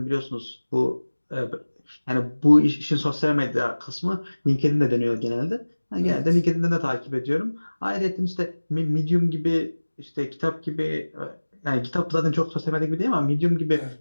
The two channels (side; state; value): both; inverted; correlation -1.00